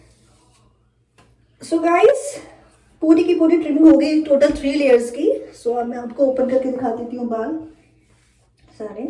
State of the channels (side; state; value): both; identical; correlation 1.00